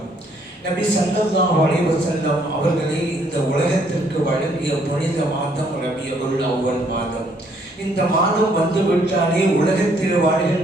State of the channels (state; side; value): normal; both; correlation 0.67